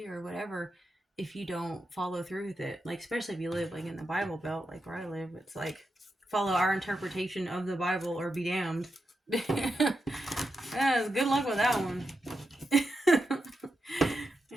or whatever, if you don't follow through with it. Like, especially if you live like in the Bible Belt, like where I live, it's like follow our interpretation of the Bible or be damned. Yeah, good luck with that one.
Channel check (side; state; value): both; normal; correlation 0.87